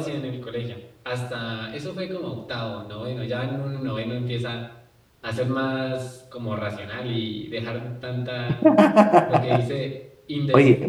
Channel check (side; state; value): both; identical; correlation 1.00